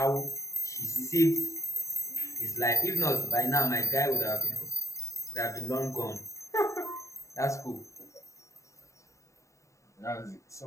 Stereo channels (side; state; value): right; late; 0.15 ms